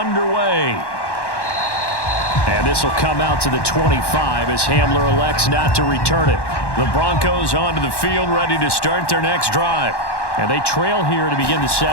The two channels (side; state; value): right; late; 1.1 ms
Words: And this will come out to the 25 as Hamler elects not to return it. The Broncos onto the field ready to start their next drive. And they trail here to begin the